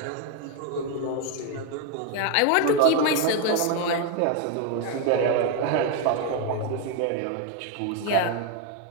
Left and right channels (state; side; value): different; both; correlation 0.01